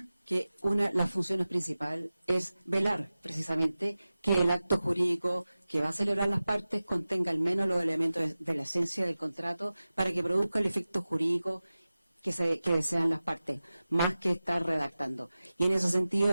que las funciones principales es velar precisamente que el acto jurídico que va a celebrar las partes contenga al menos los elementos de la esencia del contrato para que produzca el efecto jurídico que desean las partes, más que estar redactando. Y en ese sentido,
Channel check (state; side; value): inverted; both; correlation -0.96